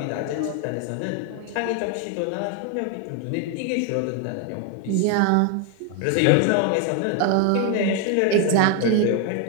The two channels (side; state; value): both; different; correlation 0.01